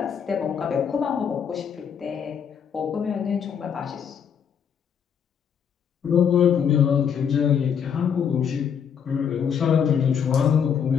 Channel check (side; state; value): right; quieter; 7.6 dB